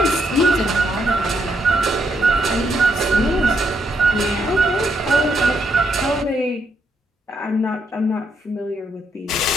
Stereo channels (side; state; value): both; normal; correlation 0.76